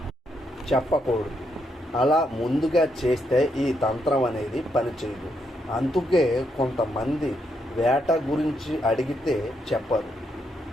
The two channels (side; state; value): both; normal; correlation 0.78